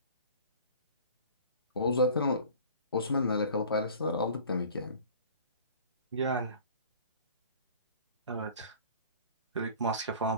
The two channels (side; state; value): both; inverted; correlation -0.45